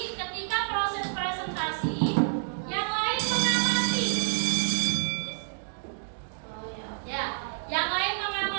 ketika proses presentasi, yang lain mengamati. Ya, yang lain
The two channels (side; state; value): left; silent; digital silence